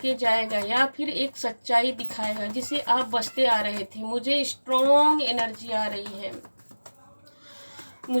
जाएगा, या फिर एक सच्चाई दिखाएगा जिसे आप बचते आ रहे थे। मुझे स्ट्रॉन्ग एनर्जी आ रही है,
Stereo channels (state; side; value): inverted; both; correlation -1.00